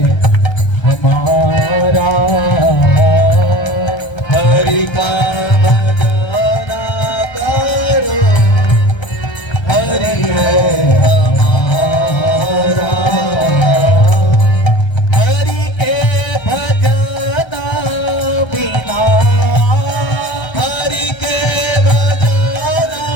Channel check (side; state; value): right; late; 1.3 ms